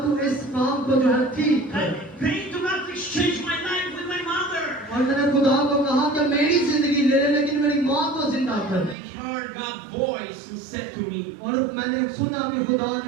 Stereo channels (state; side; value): drops out; left; at 9.0 s